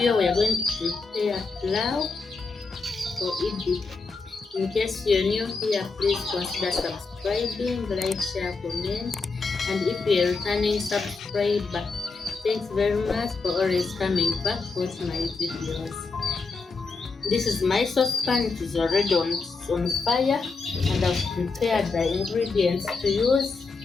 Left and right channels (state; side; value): quieter; right; 4.2 dB